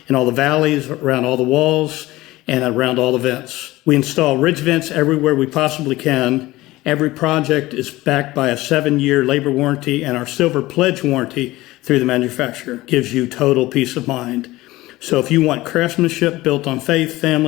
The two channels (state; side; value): quieter; right; 18.5 dB